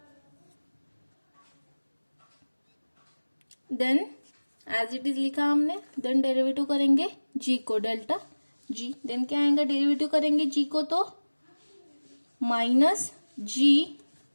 then as it is लिखा हमने। Then derivative करेंगे G को delta G. Then क्या आएगा, डेरिवेटिव करेंगे जी को तो minus G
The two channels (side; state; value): both; inverted; correlation -1.00